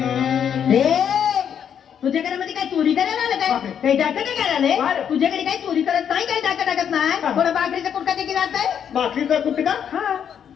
तुझ्याकडे मध्ये काय चोरी करायला आलं काय? बापरे. काही डाका नाही करायला बरं. तुझ्याकडे काही चोरी करत नाही, काही डाका टाकत नाही. हा. कोणा बाकरीचा कुडका देखील राहत आहे. बाकीचा कुठे का हा.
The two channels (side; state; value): right; quieter; 8.4 dB